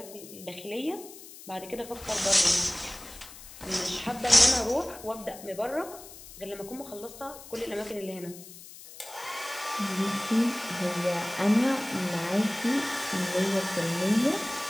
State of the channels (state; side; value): noise; left; hiss, 16 dB below the sound